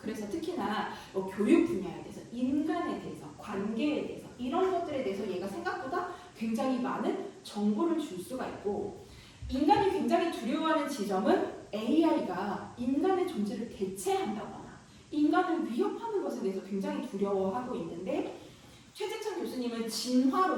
특히나 교육 분야에 대해서, 인간에 대해서, 관계에 대해서 이런 것들에 대해서 얘가 생각보다 굉장히 많은 정보를 줄 수가 있고 인간이 굉장히 두려워하는 지점은 AI가 인간의 존재를 대체한다거나 인간을 위협하는 것에 대해서 굉장히 두려워하고 있는데 최재창 교수님은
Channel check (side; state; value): both; identical; correlation 1.00